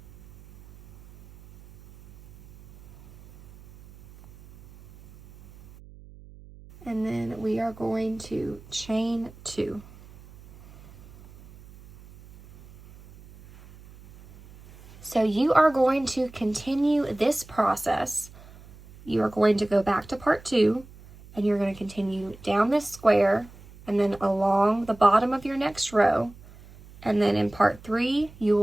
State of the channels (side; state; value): right; noise; hum, 22 dB below the sound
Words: And then we are going to chain 2. So you are going to continue this process. You are going to go back to part 2, and you're going to continue down this square and then along the bottom of your next row. And then in part 3, you